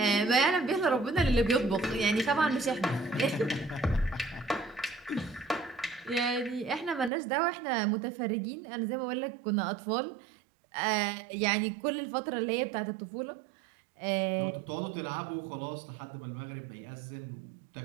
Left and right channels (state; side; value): drops out; left; at 7.1 s